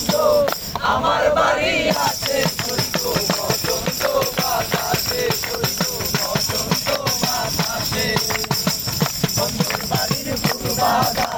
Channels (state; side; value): identical; both; correlation 1.00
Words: আমার বাড়ি আছে শৈব বসন্ত বাতাসে শৈব বসন্ত বাতাসে বন্ধুর বাড়ির ফুল